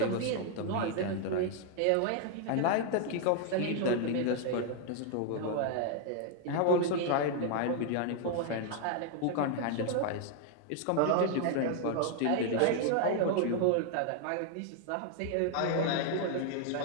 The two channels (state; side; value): different; both; correlation 0.00